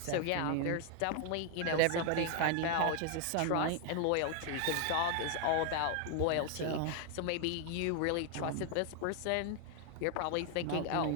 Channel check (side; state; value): both; different; correlation 0.00